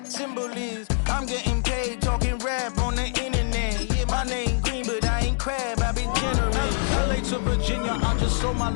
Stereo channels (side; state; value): right; silent; digital silence